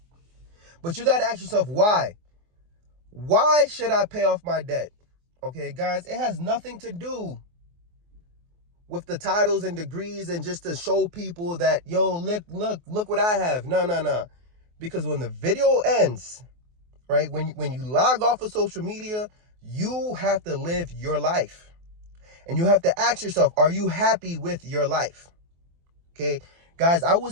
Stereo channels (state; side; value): late; left; 24 ms